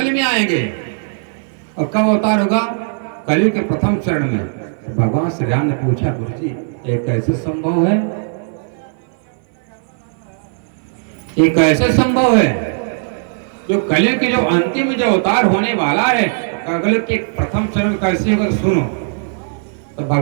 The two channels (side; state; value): left; silent; 58 dB below the other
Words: में आएंगे। और कब अवतार होगा? कलयुग के प्रथम चरण में। भगवान श्री राम ने पूछा, गुरु जी ये कैसे संभव है? ये कैसे संभव है? जो कलयुग के जो अंतिम जो अवतार होने वाला है अगले के प्रथम चरण कैसे होगा सुनो। तो